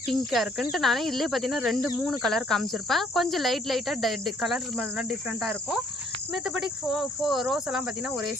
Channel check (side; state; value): both; normal; correlation 0.64